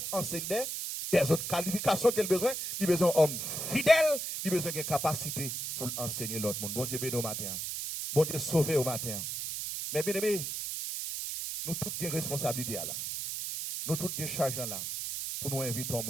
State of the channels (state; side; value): noise; right; hiss, 4 dB below the sound